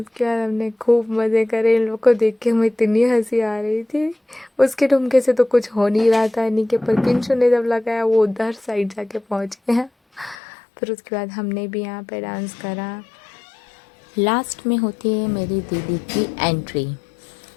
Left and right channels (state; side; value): drops out; right; at 10.4 s